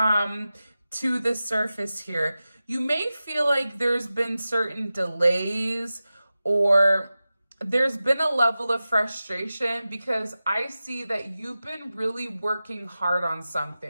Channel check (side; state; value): both; inverted; correlation -0.95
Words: to the surface here. You may feel like there's been certain delays or there's been a level of frustration because I see that you've been really working hard on